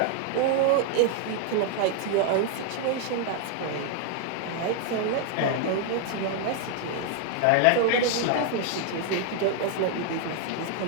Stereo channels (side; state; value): both; different; correlation 0.00